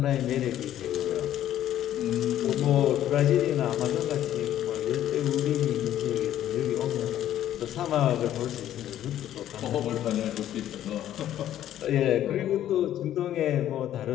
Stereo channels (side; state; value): right; quieter; 11.9 dB